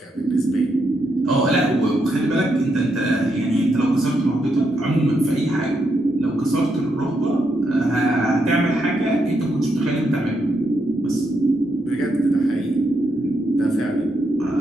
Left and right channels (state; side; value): normal; both; correlation 0.80